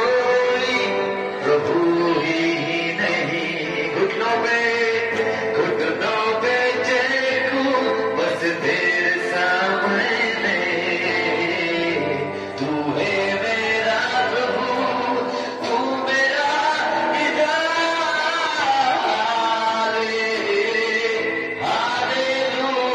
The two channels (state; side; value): identical; both; correlation 1.00